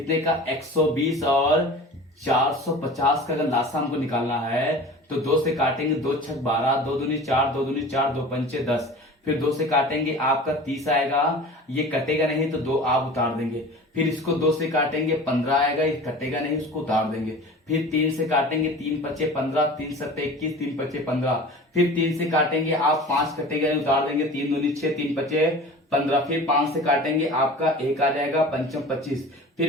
का 120 और 450 का अगर लासा हमको निकालना है तो 2 से काटेंगे, 2 छक 12, 2 दूनी 4, 2 दूनी 4, 2 पंचे 10, फिर 2 से काटेंगे आपका 30 आएगा, ये कटेगा नहीं तो 2 आप उतार देंगे। फिर इसको 2 से काटेंगे 15 आएगा, ये कटेगा नहीं, उसको उतार देंगे। फिर 3 से काटेंगे, 3 पचे 15, 3 सत्ते 21, 3 पचे 15। फिर 3 से काटेंगे आप 5 कटेगा नहीं, उतार देंगे, 3 दूनी 6, 3 पचे 15। फिर 5 से काटेंगे आपका 1 आ जाएगा, पंचम 25।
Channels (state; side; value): normal; both; correlation 0.38